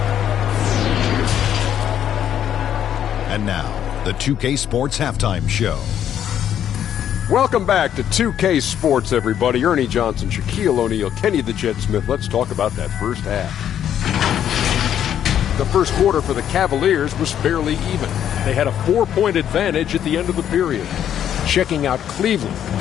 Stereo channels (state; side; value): quieter; right; 10.0 dB